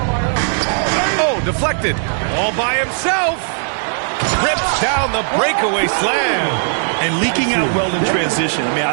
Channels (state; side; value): silent; left; digital silence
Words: Oh, deflected. All by himself. Rips down the breakaway slam. And leaking out well in transition. I mean,